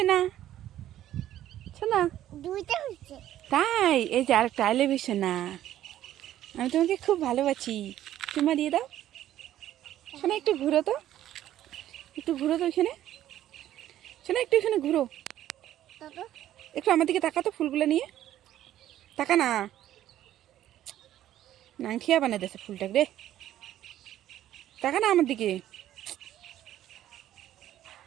সোনা। দুইটা হচ্ছে। তাই এই যে আরেকটা আলে সোনা, আমি তোমাকে খুব ভালোবাসি, চুমা দিয়ে দাও। শোনা একটু ঘুরো তো, একটু ঘুরো তো ওইখানে। শোনা একটু এখানে ঘুরো, দাদা একটু আমার দিকে তাকা তো, ফুলগুলো নিয়ে তাকা না। নাংঠিয়া বানাই দিয়েছে ফুলটাকে রে, তাকা না আমার দিকে,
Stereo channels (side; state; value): left; quieter; 12.5 dB